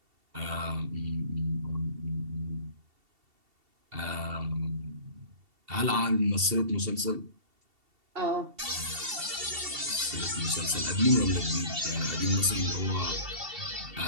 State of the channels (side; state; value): left; late; 2.7 ms